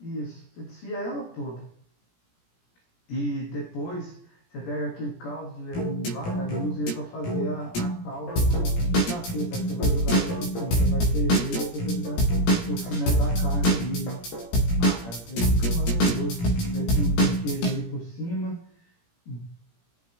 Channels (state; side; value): late; right; 17 ms